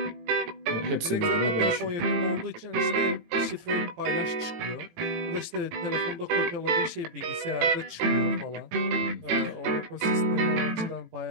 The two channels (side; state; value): left; late; 18 ms